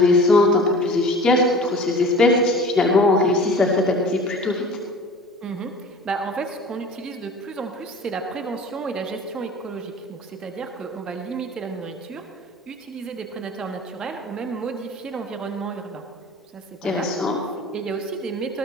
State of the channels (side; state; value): both; normal; correlation 0.41